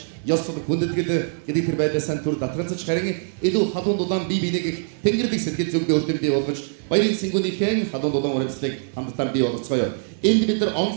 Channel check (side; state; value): left; silent; 58 dB below the other